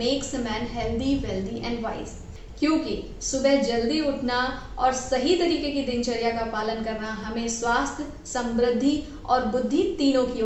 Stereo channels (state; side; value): identical; both; correlation 1.00